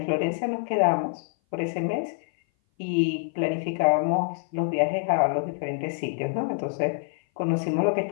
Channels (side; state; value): right; silent; 57 dB below the other